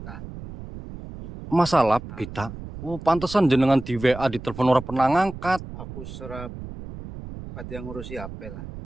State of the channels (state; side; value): noise; right; rumble, 12 dB below the sound